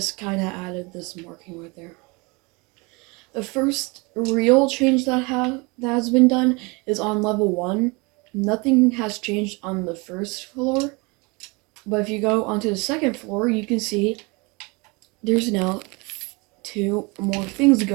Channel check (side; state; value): left; quieter; 27.8 dB